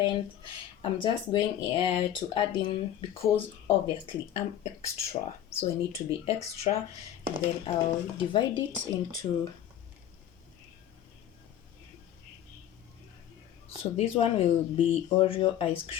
I'm just going to add in, because obviously I'm extra, so I need to be extra, and then I'll divide it into, so this one will be Oreo ice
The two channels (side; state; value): right; quieter; 11.0 dB